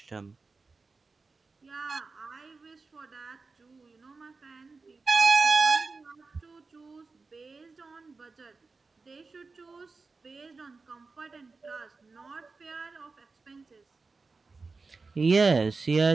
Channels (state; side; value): quieter; left; 4.1 dB